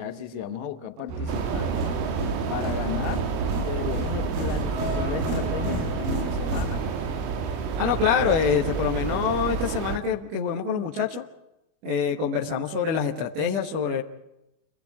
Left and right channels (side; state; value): left; late; 25 ms